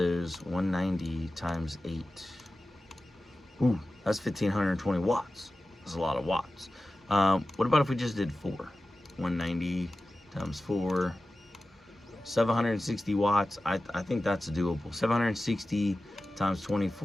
190 times 8. Ooh, that's 1,520 watts. That's a lot of watts. What about if we just did 4? 190 times 4, 760 watts. I think that's doable. 760 times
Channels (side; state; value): both; normal; correlation 0.95